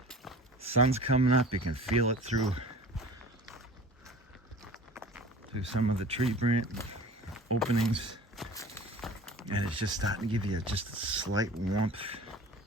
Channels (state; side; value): normal; both; correlation 0.41